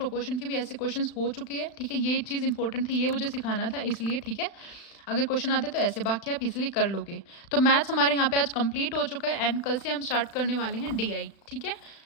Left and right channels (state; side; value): late; right; 36 ms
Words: के भी ऐसे क्वेश्चंस हो चुके हैं, ठीक है। ये चीज़ इंपॉर्टेंट थी, ये मुझे सिखाना था इसलिए, ठीक है। अगर क्वेश्चन आते तो ऐसे, बाकी आप इजीली कर लोगे। तो मैथ्स हमारे यहाँ पे आज कंप्लीट हो चुका है एंड कल से हम स्टार्ट करने वाले हैं DI, ठीक है।